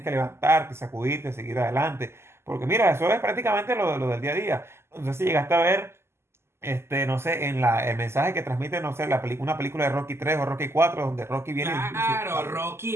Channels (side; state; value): left; late; 0.12 ms